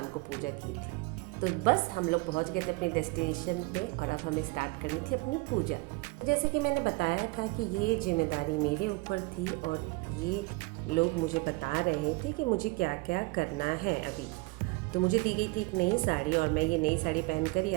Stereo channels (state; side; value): quieter; left; 25.3 dB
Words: को पूजा की थी। तो बस हम लोग पहुँच गए थे अपने डेस्टिनेशन पे और अब हमें स्टार्ट करनी थी अपनी पूजा। जैसे कि मैंने बताया था कि ये जिम्मेदारी मेरे ऊपर थी और ये लोग मुझे बता रहे थे कि मुझे क्या क्या करना है अभी। तो मुझे दी गई थी एक नई साड़ी और मैं ये नई साड़ी पहनकर ही